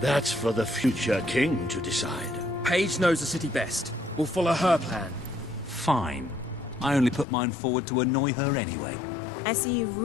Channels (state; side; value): drops out; right; at 7.2 s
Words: for the future king to decide. Paige knows the city best. We'll follow her plan. Fine. I only put mine forward to annoy her anyway. I see you've